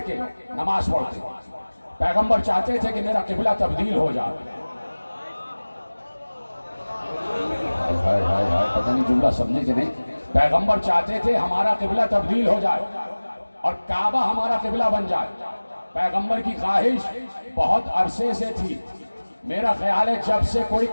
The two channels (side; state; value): both; inverted; correlation -1.00